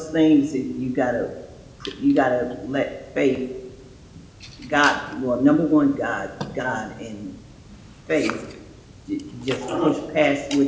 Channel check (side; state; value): both; identical; correlation 1.00